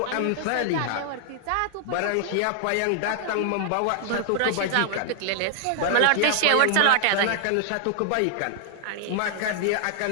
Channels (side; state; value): both; different; correlation 0.00